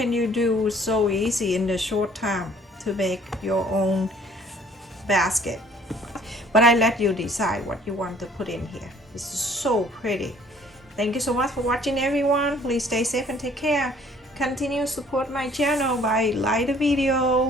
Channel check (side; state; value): both; normal; correlation 0.57